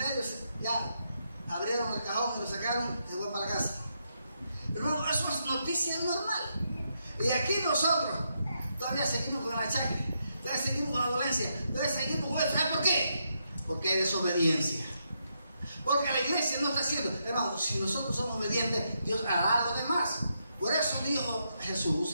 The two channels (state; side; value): inverted; both; correlation -0.80